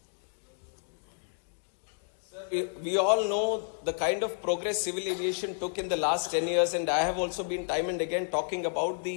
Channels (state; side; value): silent; right; digital silence